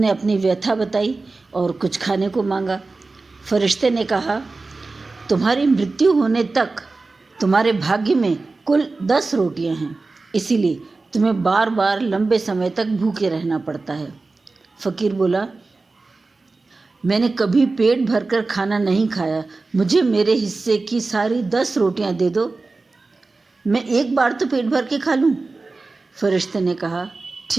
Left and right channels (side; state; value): left; quieter; 3.6 dB